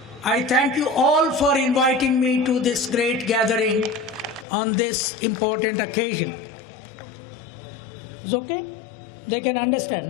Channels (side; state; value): right; drops out; at 4.5 s